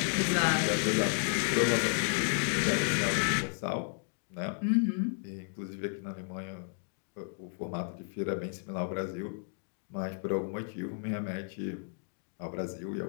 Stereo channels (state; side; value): silent; right; 56 dB below the other